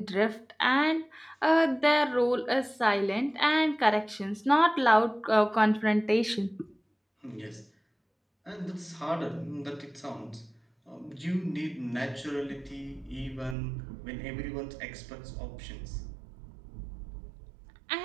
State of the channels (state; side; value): drops out; left; at 13.6 s